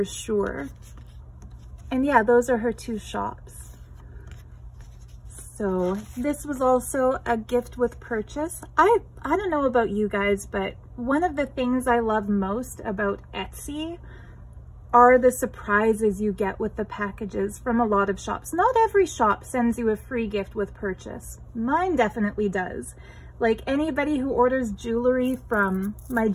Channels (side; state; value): both; identical; correlation 1.00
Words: sure. And yeah, those are her two shops. So this was also a gift with purchase. I don't know about you guys, but one of the things I love most about Etsy are the surprises you get with the packages from a lot of shops. Not every shop sends you a free gift with purchase. Mine definitely does. Like anybody who orders jewelry from my